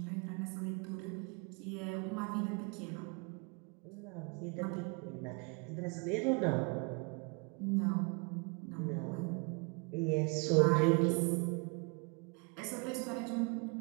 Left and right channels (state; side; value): quieter; left; 32.2 dB